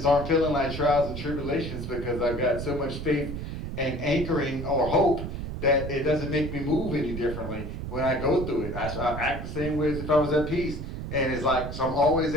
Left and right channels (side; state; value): right; noise; rumble, 6 dB below the sound